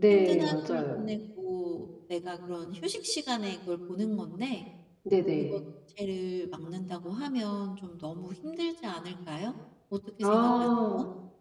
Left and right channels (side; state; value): both; identical; correlation 1.00